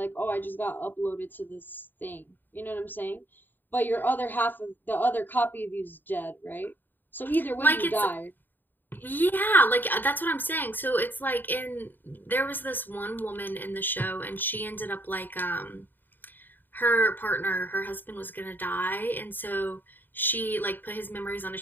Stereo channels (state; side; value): late; right; 0.091 ms